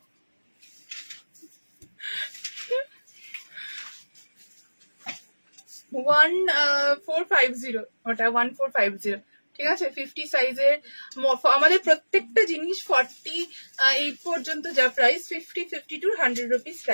ওটা 1450, ঠিক আছে? 50 সাইজের আমাদের প্রত্যেকটা জিনিস 48 পর্যন্ত যা প্রাইস, 50, 52, 100 রুপিস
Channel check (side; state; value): both; inverted; correlation -1.00